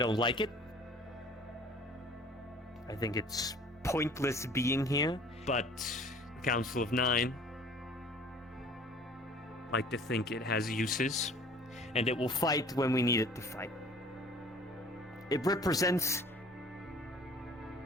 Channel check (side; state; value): both; normal; correlation 0.50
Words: like it. I think it's pointless being here, but the Council of Nine like to think it has uses, and it will fight when we need it to fight. It represents